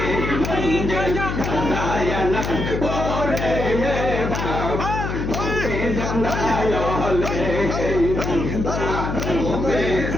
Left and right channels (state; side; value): noise; left; hum, 3 dB below the sound